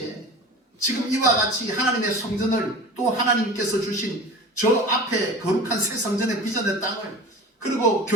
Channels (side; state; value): both; normal; correlation 0.36